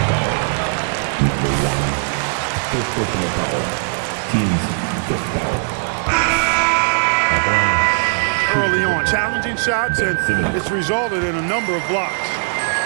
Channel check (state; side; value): silent; left; digital silence